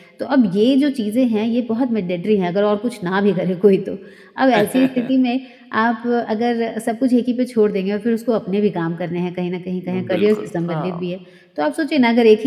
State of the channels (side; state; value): both; identical; correlation 1.00